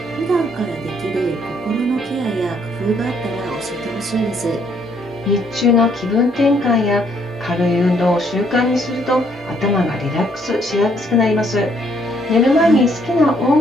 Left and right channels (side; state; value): both; normal; correlation 0.68